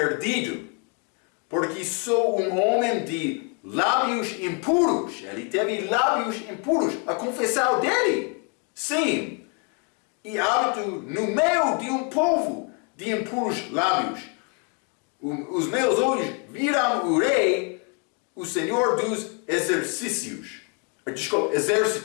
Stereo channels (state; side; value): quieter; right; 37.1 dB